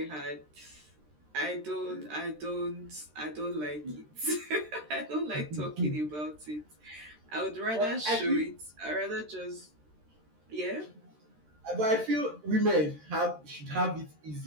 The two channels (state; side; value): late; left; 13 ms